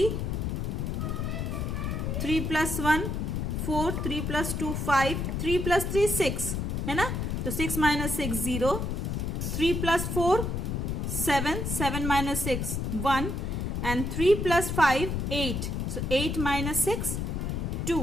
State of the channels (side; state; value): left; noise; rumble, 1 dB below the sound